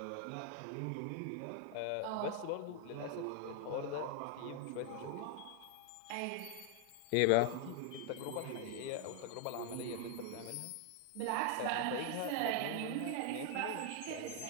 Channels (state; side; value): different; both; correlation 0.00